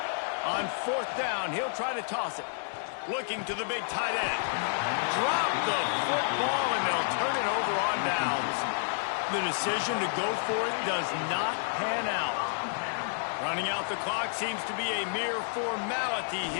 On 4th down, he'll try to toss it. Looking to the big tight end. Drop the football, and they'll turn it over on downs. The decision to go for it does not pan out. Running out the clock seems to be a mere formality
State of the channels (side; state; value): right; silent; digital silence